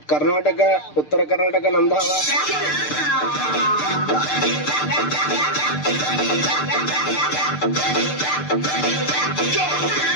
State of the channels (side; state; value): right; late; 6.7 ms